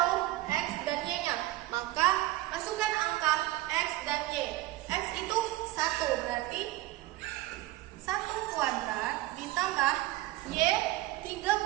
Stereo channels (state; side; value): quieter; left; 17.2 dB